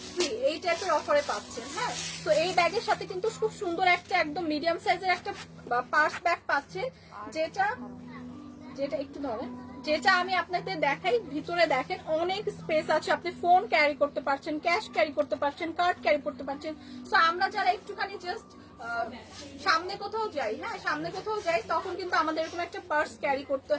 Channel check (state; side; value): identical; both; correlation 1.00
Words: ফ্রি এই টাইপের অফারে পাচ্ছেন। হ্যাঁ, তো এই ব্যাগের সাথে কিন্তু খুব সুন্দর একটা একদম মিডিয়াম সাইজের একটা পার্স ব্যাগ পাচ্ছেন যেটা একটু ধরেন, যেটা আমি আপনাদের দেখাই। ভিতরে দেখেন অনেক স্পেস আছে, আপনি ফোন ক্যারি করতে পারছেন, ক্যাশ ক্যারি করতে পারছেন, কার্ড ক্যারি করতে পারছেন। সো আমরা যারা একটুখানি জাস্ট সামনে কোথাও যাই, হ্যাঁ সামনে কোথাও যাই তখন কিন্তু আমাদের এরকম একটা পার্স ক্যারি করতে